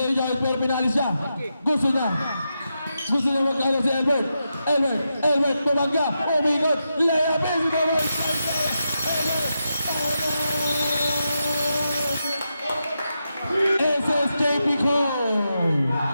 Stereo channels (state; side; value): inverted; both; correlation -0.87